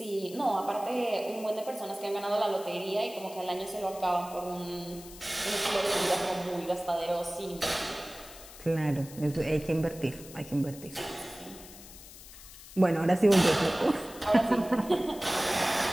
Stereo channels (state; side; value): noise; left; hiss, 17 dB below the sound